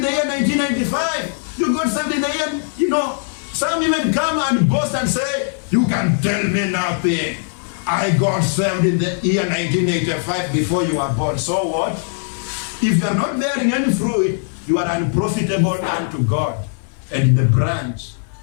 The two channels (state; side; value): silent; right; 66 dB below the other